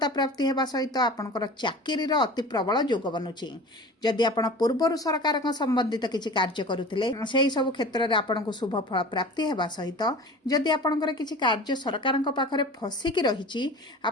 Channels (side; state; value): both; normal; correlation 0.38